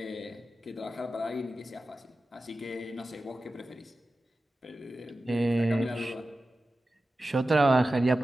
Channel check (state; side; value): normal; both; correlation 0.94